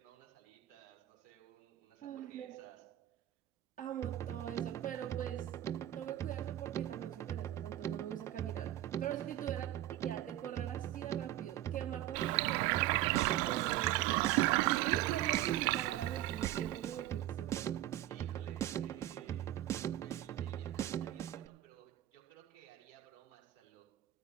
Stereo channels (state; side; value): quieter; left; 14.0 dB